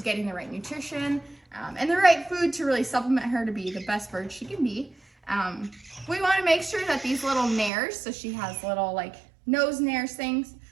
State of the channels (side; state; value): left; drops out; at 7.7 s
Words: getting the right nutrition and the right food to really supplement her to be the best bird she can be. We want to make sure that these little nares, so she has little like nose nares things,